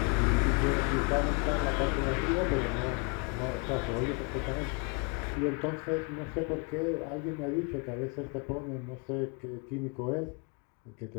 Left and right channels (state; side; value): quieter; right; 34.1 dB